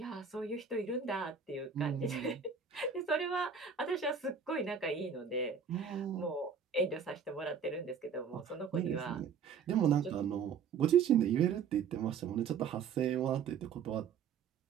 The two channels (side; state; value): left; quieter; 6.5 dB